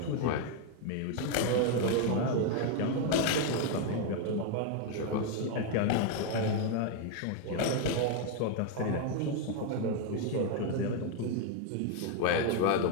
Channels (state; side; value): different; both; correlation 0.01